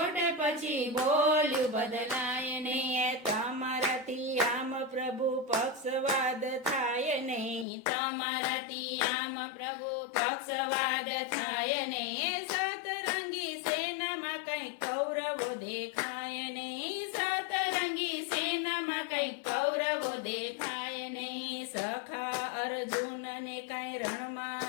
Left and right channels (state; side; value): drops out; right; at 7.7 s